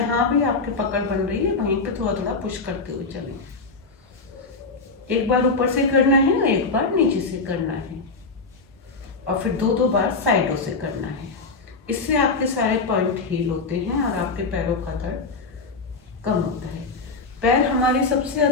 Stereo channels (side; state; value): right; quieter; 3.9 dB